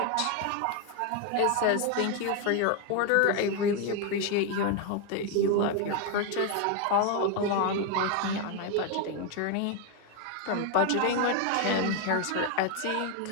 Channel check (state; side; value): different; both; correlation 0.01